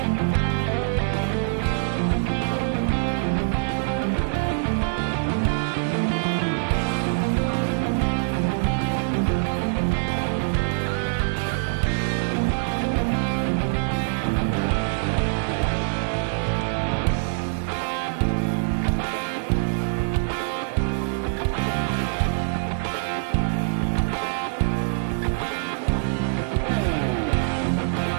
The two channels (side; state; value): left; silent; digital silence